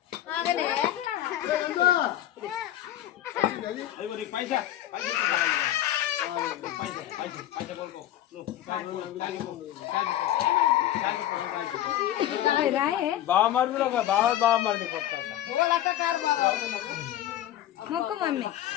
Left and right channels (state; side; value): quieter; right; 12.8 dB